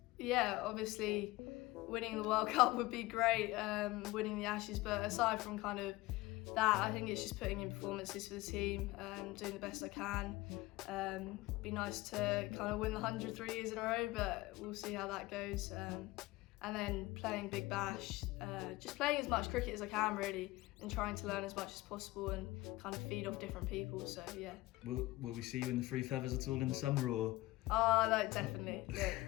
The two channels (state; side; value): quieter; right; 19.6 dB